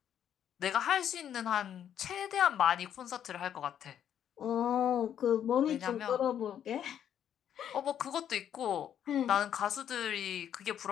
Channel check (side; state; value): right; quieter; 9.7 dB